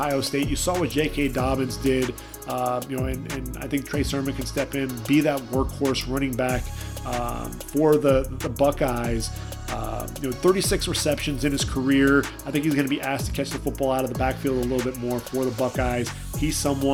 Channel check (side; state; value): both; identical; correlation 1.00